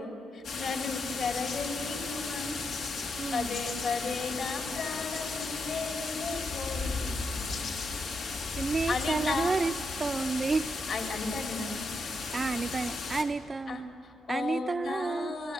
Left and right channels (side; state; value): both; normal; correlation 0.82